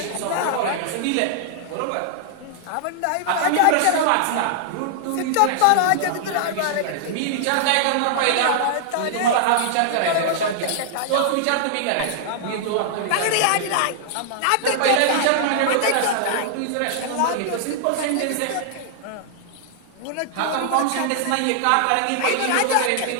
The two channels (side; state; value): both; different; correlation -0.01